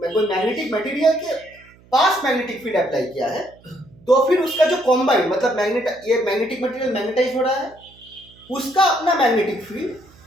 मैग्नेटिक मटेरियल के पास मैग्नेटिक फील्ड अप्लाई किया है तो फिर उसका जो कॉम्बाइन, मतलब ये मैग्नेटिक मटेरियल मैग्नेटाइज हो रहा है, उसका अपना मैग्नेटिक फील्ड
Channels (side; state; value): right; noise; hum, 27 dB below the sound